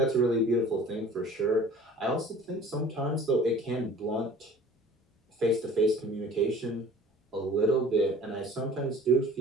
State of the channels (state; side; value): normal; both; correlation 0.47